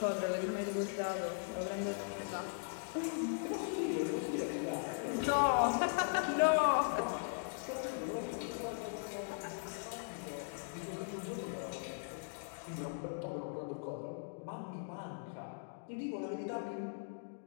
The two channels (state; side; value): silent; right; digital silence